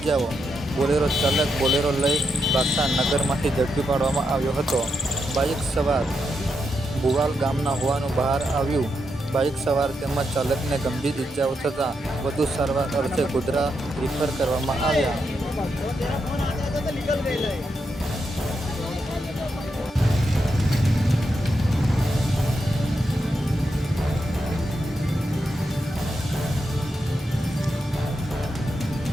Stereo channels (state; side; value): normal; both; correlation 0.84